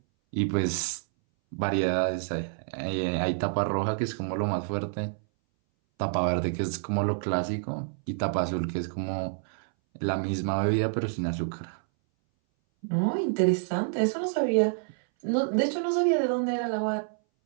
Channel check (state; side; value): silent; left; 59 dB below the other